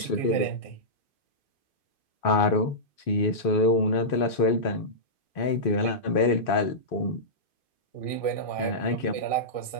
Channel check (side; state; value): right; late; 2.5 ms